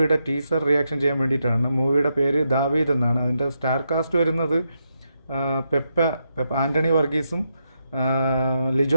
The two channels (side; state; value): both; inverted; correlation -0.83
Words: ടീസർ റിയാക്ഷൻ ചെയ്യാൻ വേണ്ടിയിട്ടാണ്. മൂവിയുടെ പേര് ദാവീദ് എന്നാണ്. അതിൻ്റെ സ്റ്റാർ കാസ്റ്റ് വരുന്നത് പെപ്പ ആൻ്റണി വർഗീസും